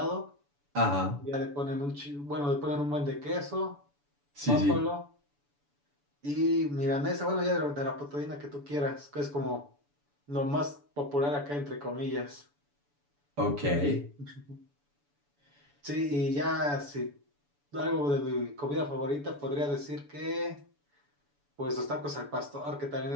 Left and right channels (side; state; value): left; late; 7.0 ms